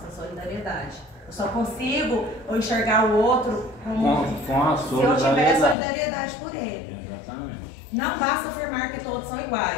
a solidariedade. Eu só consigo enxergar o outro como se eu tiver solidariedade por ele. Exatamente. Não basta afirmar que todos são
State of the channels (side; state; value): right; drops out; at 5.8 s